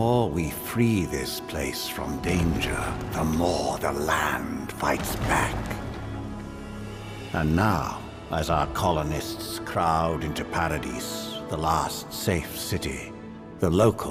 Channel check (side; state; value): both; identical; correlation 1.00